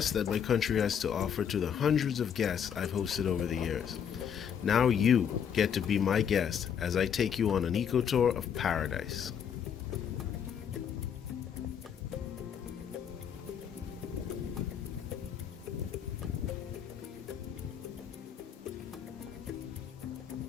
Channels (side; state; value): right; quieter; 8.1 dB